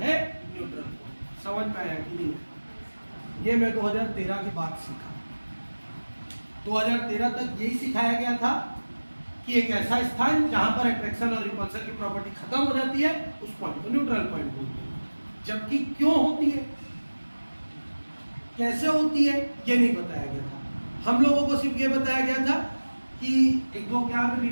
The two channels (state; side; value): inverted; both; correlation -1.00